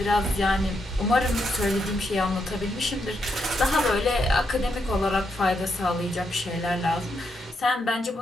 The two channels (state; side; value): normal; both; correlation 0.80